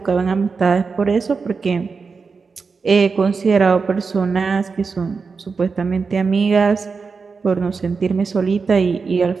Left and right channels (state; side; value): quieter; left; 4.9 dB